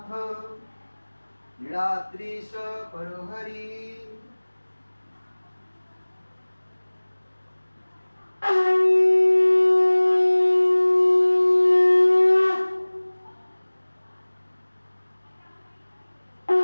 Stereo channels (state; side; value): inverted; both; correlation -1.00